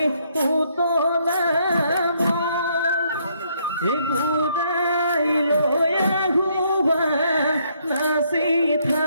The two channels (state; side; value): inverted; both; correlation -0.70